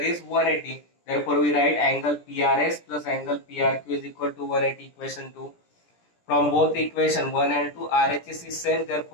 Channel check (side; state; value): right; late; 17 ms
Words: 180. Therefore, we write angle PRS plus angle PRQ is equal to 180 equation 2. From both equation 1 and 2, RHS is same.